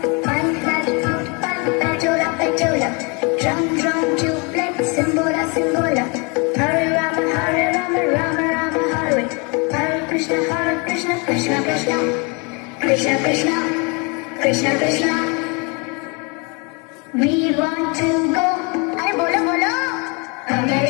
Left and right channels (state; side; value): quieter; right; 30.9 dB